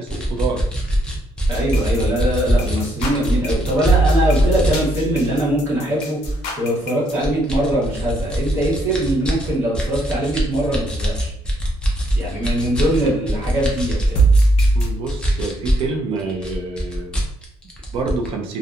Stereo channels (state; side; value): normal; both; correlation 0.73